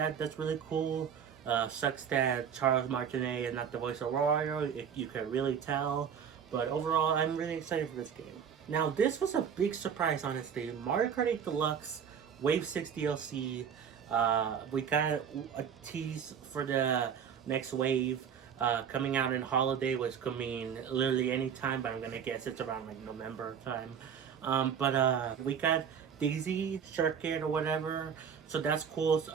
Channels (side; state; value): left; quieter; 7.6 dB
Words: really cool. Sucks that Charles Martinet is not the voice of Wario. You can really tell, but overall, I'm really excited for this game. Now, this was a big surprise, honestly. Mario Kart 8 Deluxe Wave 6 DLC. We got a tease for the next wave coming out in holiday, which could mean literally any time, but I'm gonna guess it's around like November time. But we got Daisy Circuit or whatever, so that's cool.